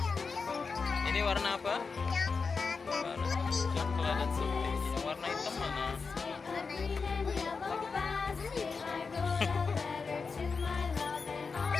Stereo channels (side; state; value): right; quieter; 4.9 dB